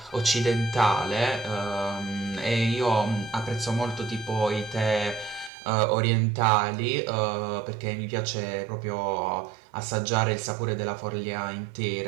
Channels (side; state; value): left; drops out; at 5.5 s